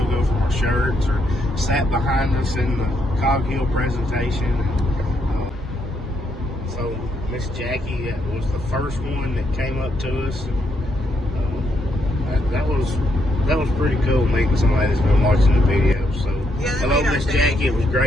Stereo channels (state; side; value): normal; both; correlation 0.76